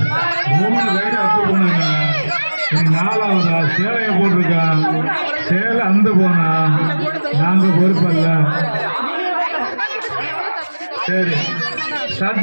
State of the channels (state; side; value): inverted; both; correlation -1.00